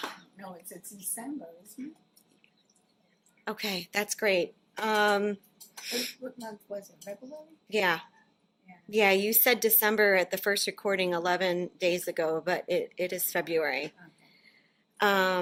mind. No, it's December, isn't it? Okay, that's great. What month was it? February? Yeah. Yeah, you said December at the first recording 11 days ago, but it is February.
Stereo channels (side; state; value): both; identical; correlation 1.00